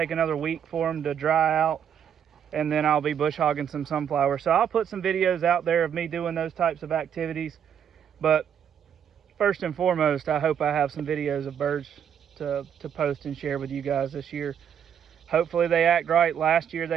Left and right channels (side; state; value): left; quieter; 8.6 dB